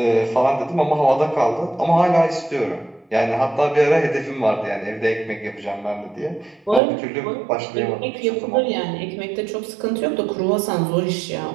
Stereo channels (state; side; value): drops out; left; at 6.8 s